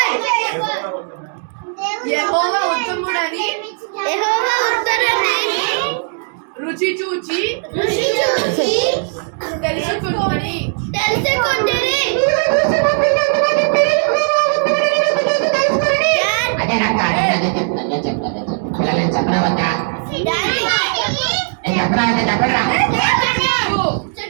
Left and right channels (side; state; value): left; silent; 59 dB below the other